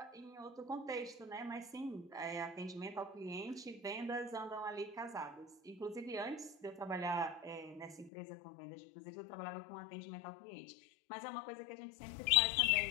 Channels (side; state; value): right; drops out; at 8.1 s